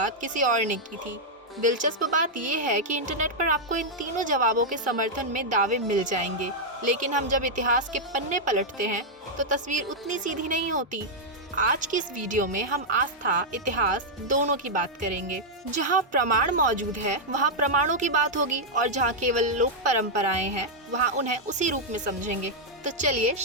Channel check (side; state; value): both; normal; correlation -0.04